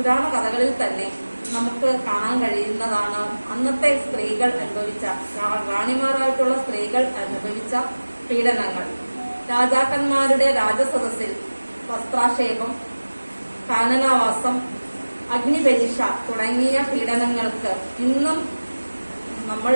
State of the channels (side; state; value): both; inverted; correlation -1.00